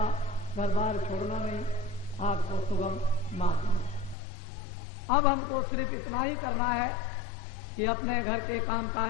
घर बार छोड़ना नहीं, आपको सुगम मार्ग मिले। अब हमको सिर्फ इतना ही करना है कि अपने घर के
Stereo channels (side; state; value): right; drops out; at 4.2 s